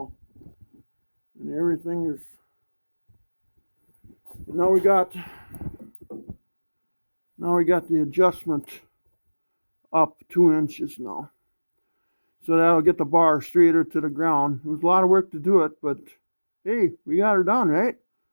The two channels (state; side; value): inverted; both; correlation -1.00